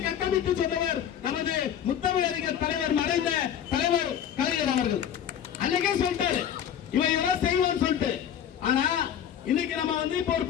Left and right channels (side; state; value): right; quieter; 9.5 dB